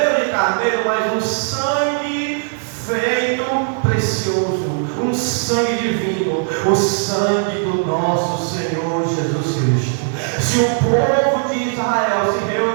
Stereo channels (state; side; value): silent; left; 65 dB below the other